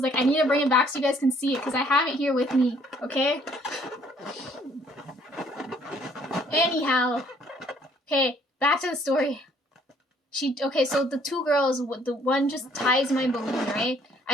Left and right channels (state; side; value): normal; both; correlation 0.62